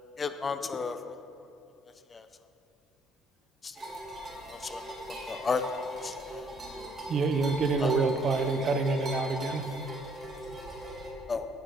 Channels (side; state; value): both; normal; correlation 0.65